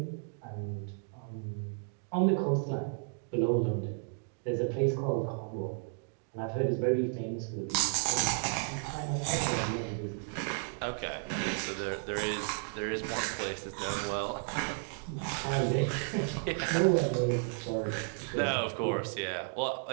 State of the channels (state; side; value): silent; left; 56 dB below the other